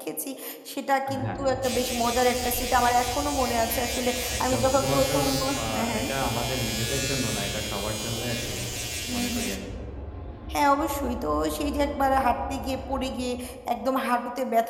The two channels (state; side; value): identical; both; correlation 1.00